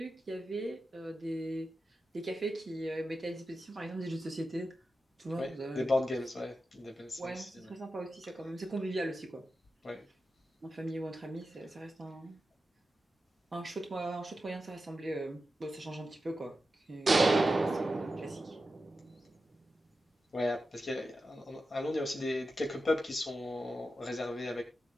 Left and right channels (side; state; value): both; normal; correlation 0.91